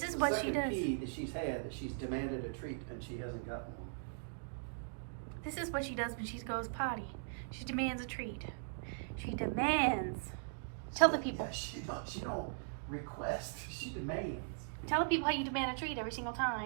is what she does. Key that she's had that she's demanded a treat and she hasn't gotten one. This is what she does when she goes potty. She demands a treat. She demands. Tell the people. Yeah, she don't request. She demands. Tell the people how you demand a treat every single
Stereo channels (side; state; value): left; silent; digital silence